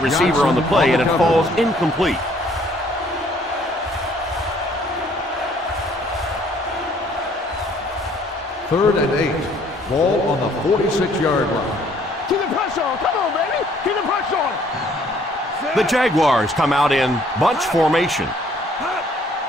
on the play, and it falls incomplete. Third and 8. Ball on the 46-yard line. Keep the pressure on. Come on, baby. Keep the pressure on. The Jaguars come out in bunch formation.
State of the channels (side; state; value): both; normal; correlation 0.61